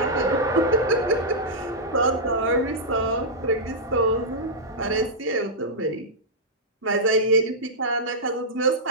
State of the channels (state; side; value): normal; both; correlation -0.10